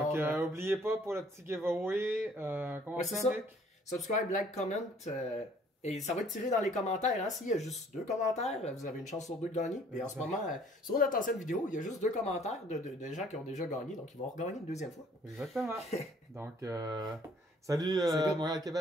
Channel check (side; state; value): both; normal; correlation 0.58